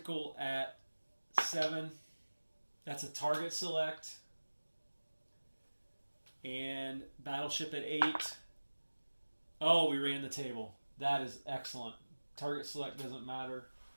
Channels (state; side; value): inverted; both; correlation -1.00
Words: at 7. That's a target select. And battleship at 8. Oh, we ran the table. That is excellent. Target select doesn't matter.